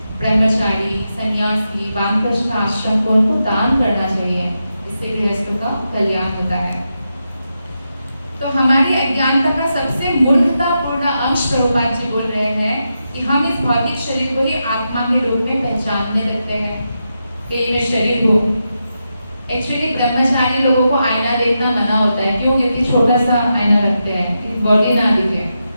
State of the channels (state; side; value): inverted; both; correlation -0.87